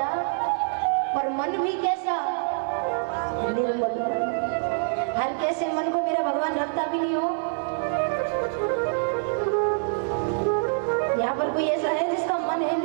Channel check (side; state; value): left; silent; digital silence